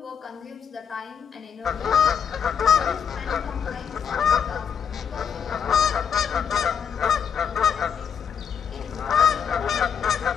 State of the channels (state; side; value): quieter; right; 7.3 dB